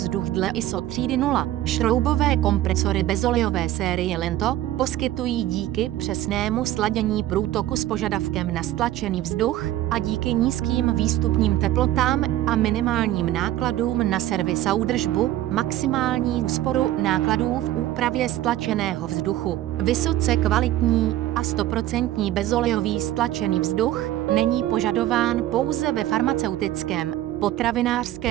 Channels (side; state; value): left; quieter; 14.0 dB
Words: dle ISO třídy 0. Šroubové kompresory bezolejové série Lento poskytují díky přesnému sladění průtoku s požadavkem na stlačený vzduch a díky nízkým výstupním teplotám a minimálním nákladům na servis a údržbu maximální úsporu nákladů v úpravě stlačeného vzduchu. Vysoce kvalitní a 100% bezolejový stlačený vzduch není požadován pouze ve farmaceutickém,